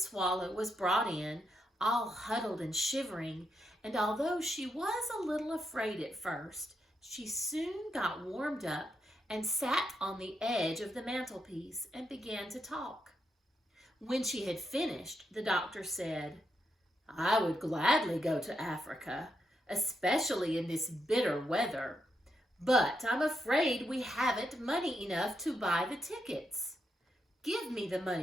was brought in, all huddled and shivering, and although she was a little afraid at first, she soon got warmed up and sat on the edge of the mantelpiece and began to talk. When she had finished, the doctor said, "I would gladly go to Africa, especially in this bitter weather, but I'm afraid we haven't money enough to buy the tickets. Give me the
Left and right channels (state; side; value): normal; both; correlation 0.82